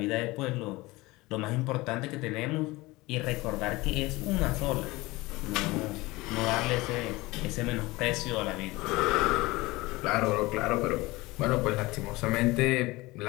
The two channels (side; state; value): right; quieter; 21.2 dB